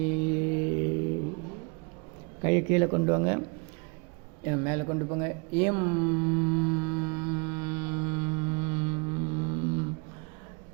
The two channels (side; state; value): left; quieter; 31.9 dB